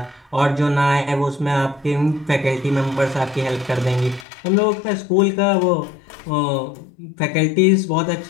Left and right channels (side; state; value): right; drops out; at 4.2 s